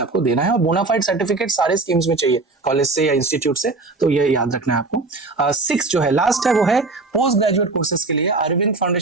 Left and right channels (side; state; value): left; quieter; 3.5 dB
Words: देना है। और बोनाफाइड सर्टिफिकेट सारे स्कीम्स में चाहिए, कॉलेज से या इंस्टीट्यूट से, तो ये याद रखना है आपको। 6 जो है लास्ट है वो है पोस्ट ग्रेजुएट कोर्सेज के लिए Arvind